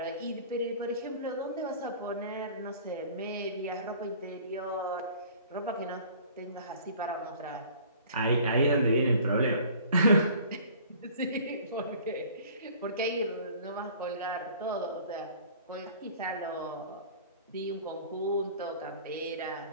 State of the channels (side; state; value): both; inverted; correlation -0.48